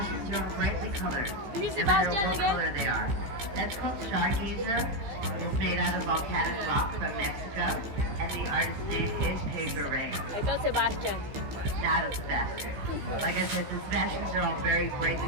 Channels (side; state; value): left; late; 15 ms